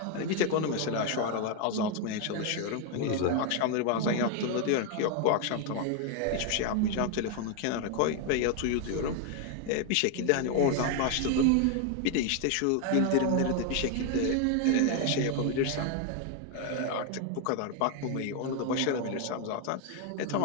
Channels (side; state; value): both; different; correlation 0.01